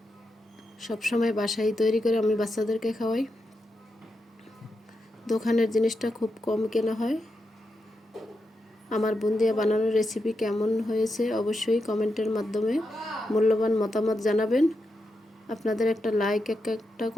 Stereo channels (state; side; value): normal; both; correlation 0.86